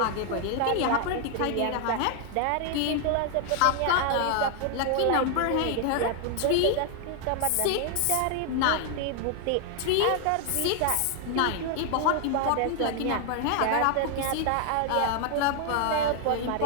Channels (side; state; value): both; different; correlation 0.00